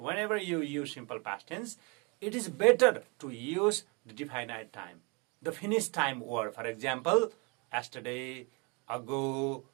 you use simple past tense, it is better to use the definite time, the finished time word. For example, yesterday, ago,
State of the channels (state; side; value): quieter; left; 30.9 dB